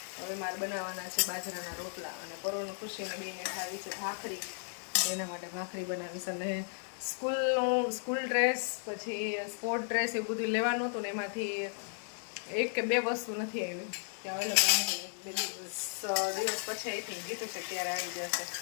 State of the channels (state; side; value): silent; right; digital silence